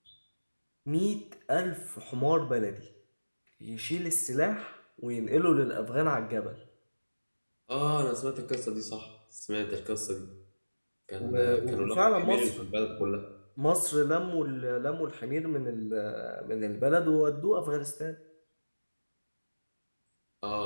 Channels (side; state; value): both; inverted; correlation -1.00